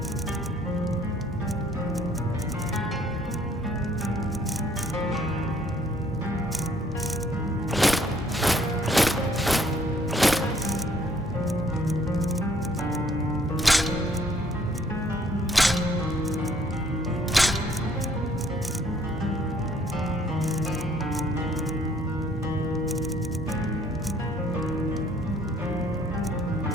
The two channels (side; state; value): both; normal; correlation 0.63